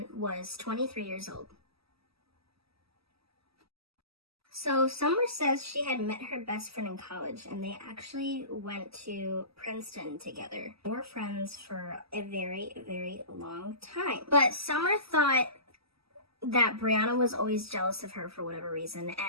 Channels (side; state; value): left; late; 0.76 ms